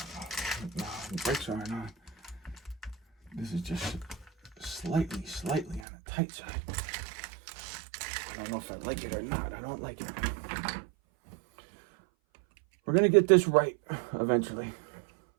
know. No, the brakes aren't on. This is just slightly on the tight side. I don't know if I like it or not. I don't like it. We're going to get this right eventually.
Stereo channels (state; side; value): drops out; left; at 5.9 s